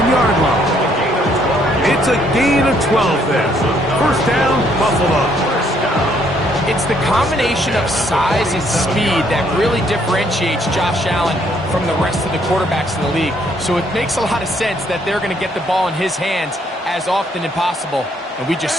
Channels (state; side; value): normal; both; correlation 0.68